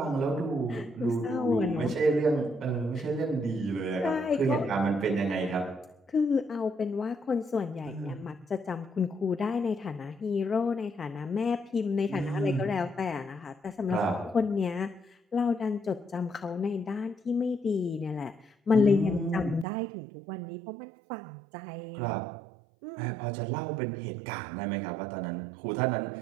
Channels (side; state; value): left; drops out; at 19.7 s